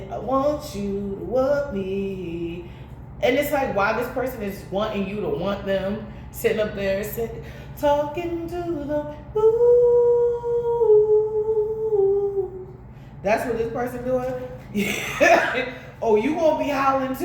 I want you to want me. And it's like, why this person is wanting you to want them, sitting up there, talking to them. Ooh. That's what this person doing? Oh, you gonna be howling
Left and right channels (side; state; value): both; identical; correlation 1.00